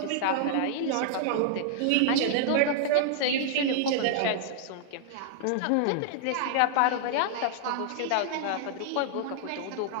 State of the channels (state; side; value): different; both; correlation -0.01